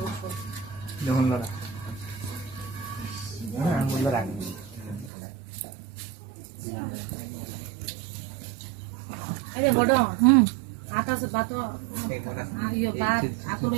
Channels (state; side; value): drops out; left; at 5.1 s